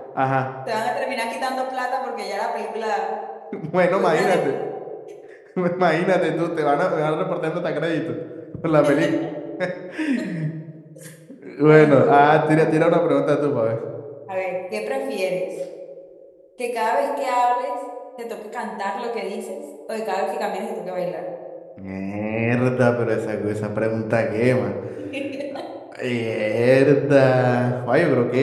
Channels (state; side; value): identical; both; correlation 1.00